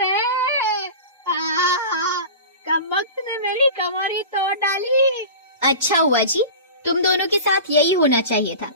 कम वक्त ने मेरी कमरी तोड़ डाली। अच्छा हुआ जी, तुम दोनों के साथ यही होना चाहिए था।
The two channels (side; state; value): both; inverted; correlation -0.33